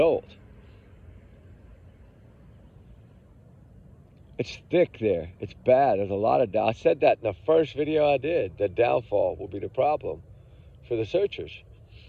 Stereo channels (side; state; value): both; identical; correlation 1.00